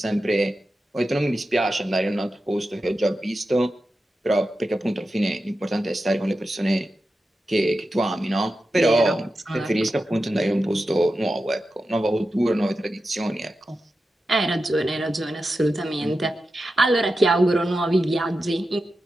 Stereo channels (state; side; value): normal; both; correlation 0.91